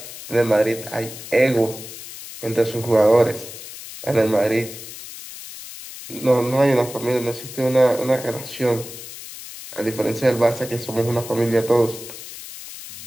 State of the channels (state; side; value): noise; left; hiss, 13 dB below the sound